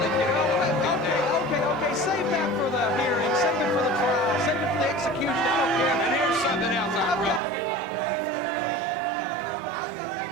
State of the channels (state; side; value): drops out; left; at 7.4 s